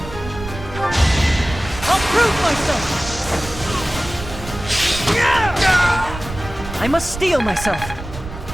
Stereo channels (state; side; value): noise; right; rumble, 11 dB below the sound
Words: I must steel myself.